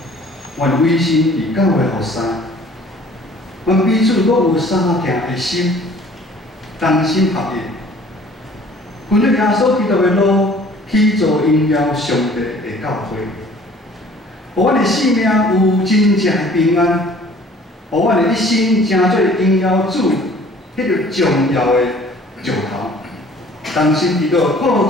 阮委身伫教会服侍，阮彼此各有相听的心，同心合意，分享耶稣基督的路，去做荣耀上帝的教会，互阮的生命有真正的平安，互阮的一生成做荣耀主迄个重要的石头。同心祈祷，靠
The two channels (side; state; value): both; normal; correlation 0.52